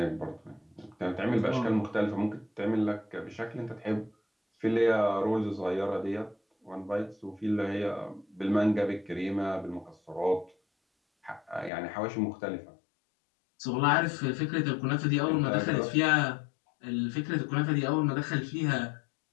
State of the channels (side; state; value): right; drops out; at 11.7 s